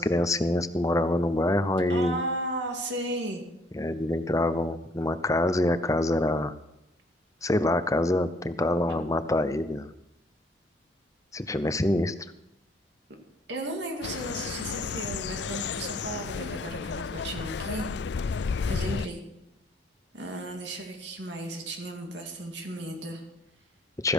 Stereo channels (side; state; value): both; normal; correlation 0.63